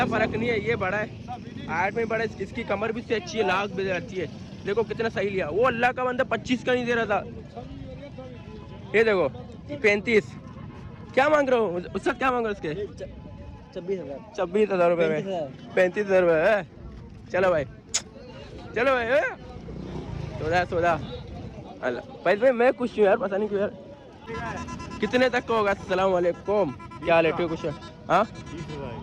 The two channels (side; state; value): both; identical; correlation 1.00